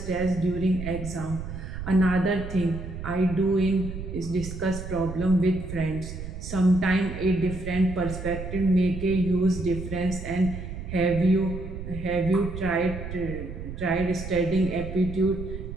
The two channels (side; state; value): right; noise; rumble, 8 dB below the sound